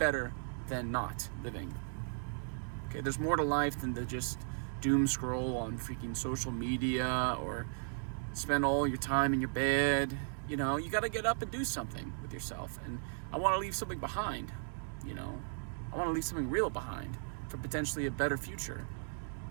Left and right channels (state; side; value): silent; left; digital silence